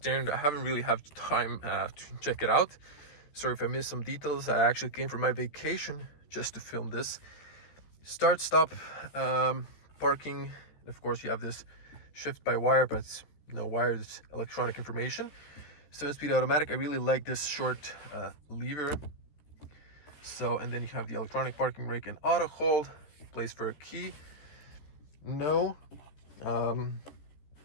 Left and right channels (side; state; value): right; late; 14 ms